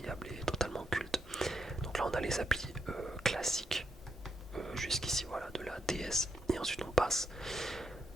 et totalement culte. Donc là on a les applis classiques jusqu'ici, voilà, de la DS, et ensuite on passe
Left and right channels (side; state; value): both; normal; correlation 0.81